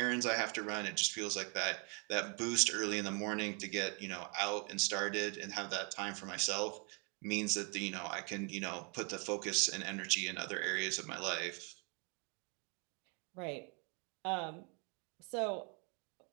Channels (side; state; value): left; quieter; 35.2 dB